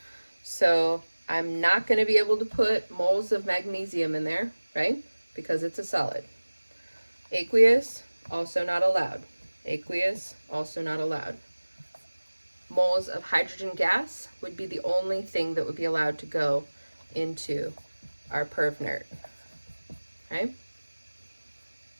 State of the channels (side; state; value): both; inverted; correlation -1.00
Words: So I'm not going to be able to put moles of magnesium in there, right? Because it's a solid. Aqueous, also not allowed. Aqueous, also not allowed. Moles of hydrogen gas would be the only thing that would be allowed to go into our perv nerd. Okay?